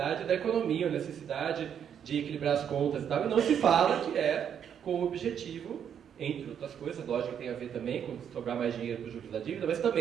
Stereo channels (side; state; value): left; quieter; 8.5 dB